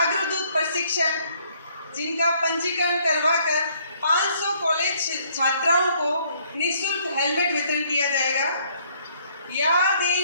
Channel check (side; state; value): both; inverted; correlation -0.65